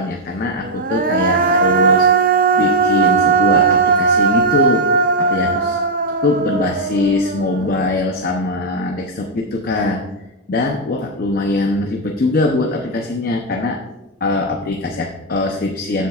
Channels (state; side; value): normal; both; correlation 0.00